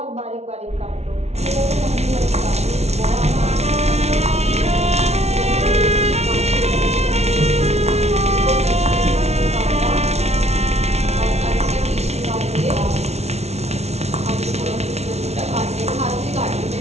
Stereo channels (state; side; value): late; left; 0.31 ms